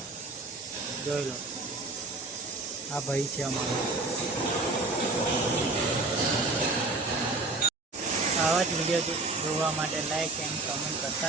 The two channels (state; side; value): quieter; left; 3.3 dB